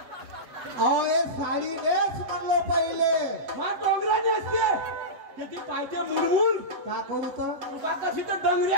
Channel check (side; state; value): left; late; 8.0 ms